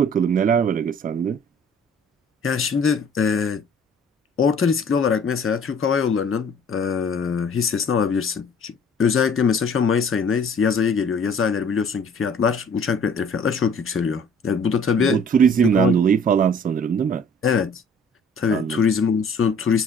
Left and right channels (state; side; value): normal; both; correlation 0.53